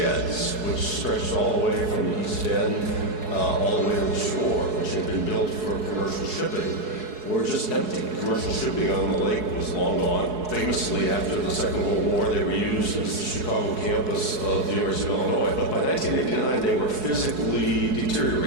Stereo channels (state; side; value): late; left; 4.7 ms